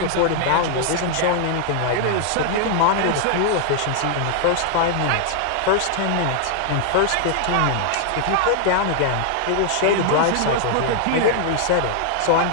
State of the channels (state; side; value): different; both; correlation 0.00